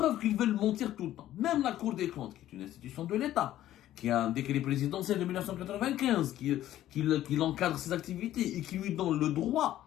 qu'ils veulent mentir tout le temps. Même la Cour des comptes, qui est une institution de l'État, qui a un décret présidentiel de 1995, qui encadre ses activités et qui lui donne le droit,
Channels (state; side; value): quieter; right; 13.2 dB